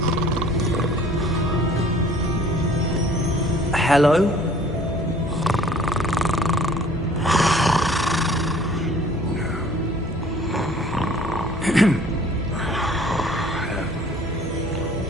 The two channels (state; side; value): normal; both; correlation 0.52